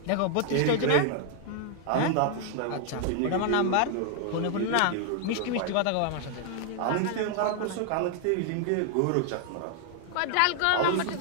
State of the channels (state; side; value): different; both; correlation 0.00